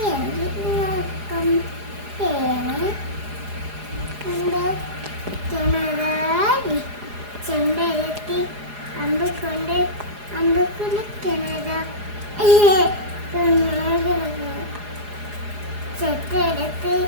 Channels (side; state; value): left; late; 4.8 ms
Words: നോക്കം തേങ്ങ കിണറാടി ചെമ്പരത്തി അമ്പക്കൊണ്ട് അമ്പക്കുള്ള കിണറ ചെത്തെടുത്ത്